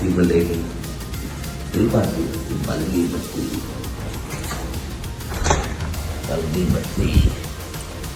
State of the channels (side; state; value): both; identical; correlation 1.00